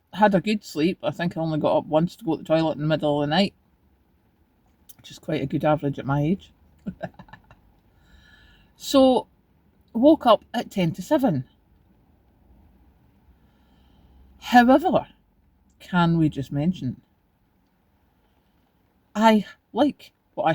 had a good sleep. I think I only got up once to go to the toilet in the middle of the night, which is quite a good average at my age. So, woke up at 10 to 7. However, can we just mention, I like what I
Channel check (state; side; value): identical; both; correlation 1.00